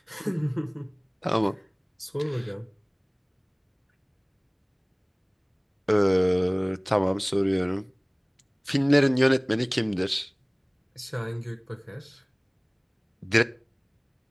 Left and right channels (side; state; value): both; identical; correlation 1.00